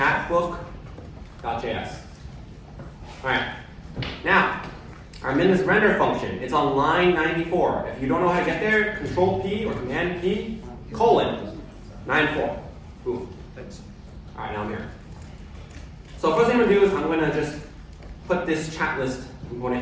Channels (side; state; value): both; identical; correlation 1.00